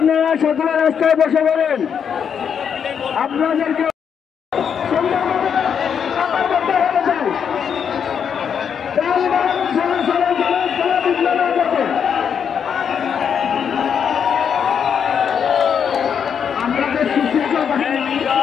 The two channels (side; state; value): right; quieter; 7.5 dB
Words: সকলে রাস্তায় বসে পড়েন। আপনাদেরকে